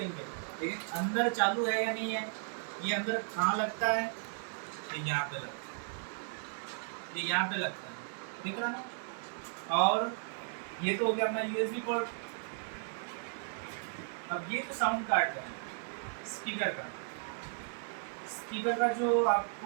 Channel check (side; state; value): left; silent; digital silence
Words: लेकिन अंदर चालू है या नहीं है, ये अंदर कहाँ लगता है? ये यहाँ पे लगता है, ये यहाँ पे लगता है, दिख रहा है? और ये तो हो गया अपना USB पोर्ट। अब ये जो साउंड कार्ड है स्पीकर का, स्पीकर का जो